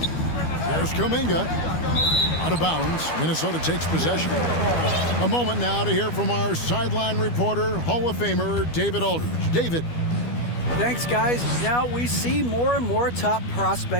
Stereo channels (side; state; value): right; late; 12 ms